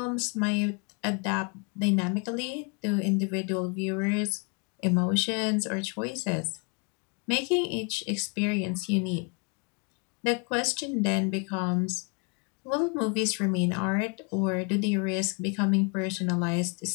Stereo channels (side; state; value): right; quieter; 34.5 dB